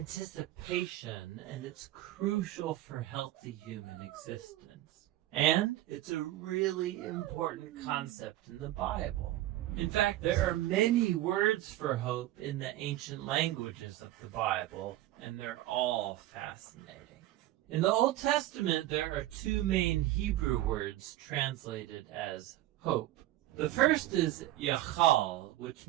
and it's crucial for healthy human existence. And it's a really important concept in the Bible. In fact, there are many words for hope in the ancient languages of the Bible, and they're all fascinating. In the Old Testament, there are two main Hebrew words translated as hope. The first is yachal, which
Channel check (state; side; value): quieter; left; 15.1 dB